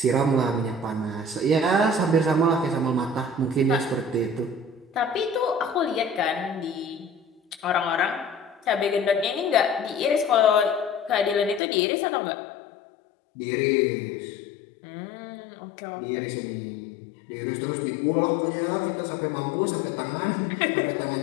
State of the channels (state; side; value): drops out; right; at 11.6 s